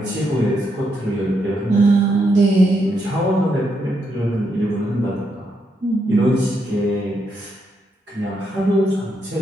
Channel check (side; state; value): both; normal; correlation 0.79